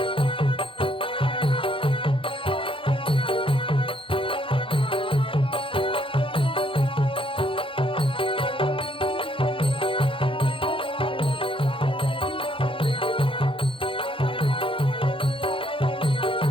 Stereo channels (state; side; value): late; right; 0.25 ms